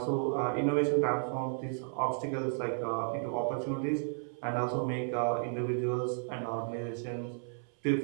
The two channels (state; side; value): silent; left; 56 dB below the other